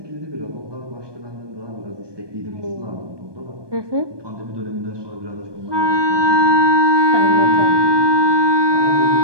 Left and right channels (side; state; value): left; late; 1.2 ms